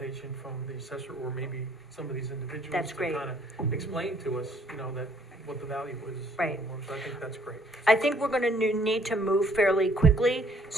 from the assessor, or maybe some of these individuals. That's great. To kind of explain to us, that what the value is. Right. So I think that's great. I think we're gonna need to move fairly quickly,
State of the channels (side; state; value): both; normal; correlation 0.63